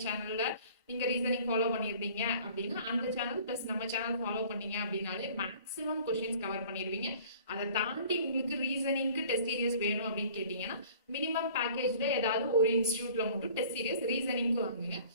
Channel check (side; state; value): both; inverted; correlation -0.49